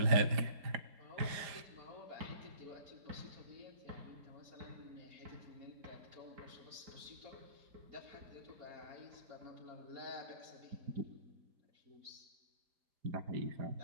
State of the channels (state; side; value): late; left; 4.9 ms